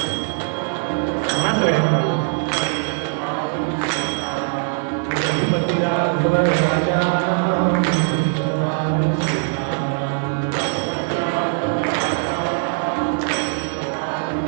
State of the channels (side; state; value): left; silent; 56 dB below the other